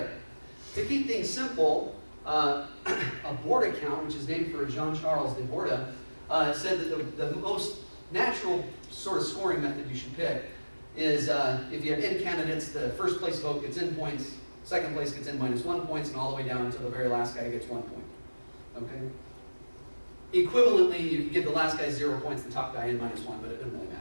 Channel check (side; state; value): both; inverted; correlation -1.00